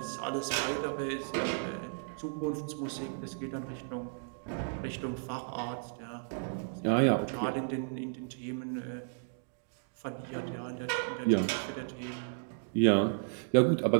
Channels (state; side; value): silent; left; digital silence